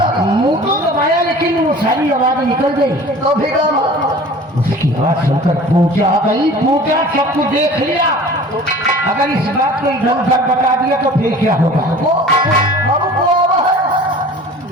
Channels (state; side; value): normal; both; correlation 0.44